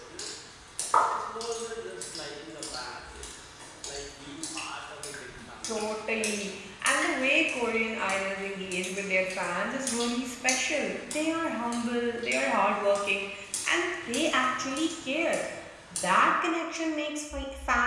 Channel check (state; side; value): identical; both; correlation 1.00